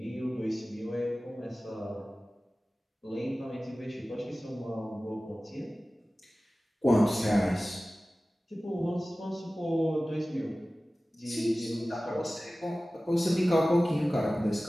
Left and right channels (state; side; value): normal; both; correlation 0.97